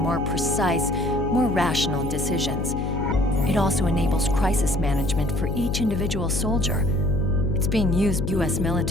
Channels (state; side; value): noise; left; hum, 3 dB below the sound